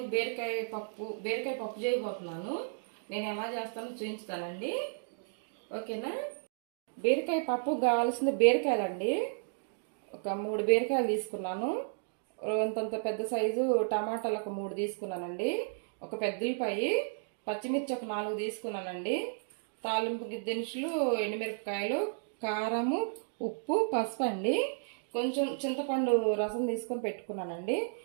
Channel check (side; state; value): left; silent; digital silence